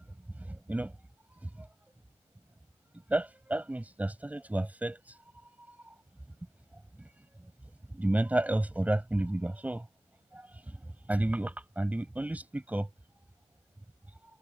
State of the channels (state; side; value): normal; both; correlation 0.97